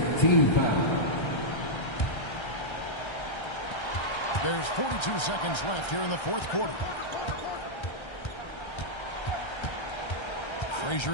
team foul. There's 42 seconds left here in the fourth quarter.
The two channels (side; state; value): right; late; 1.3 ms